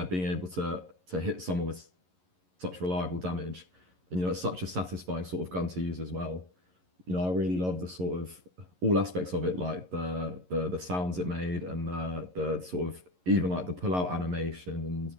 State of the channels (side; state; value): left; late; 11 ms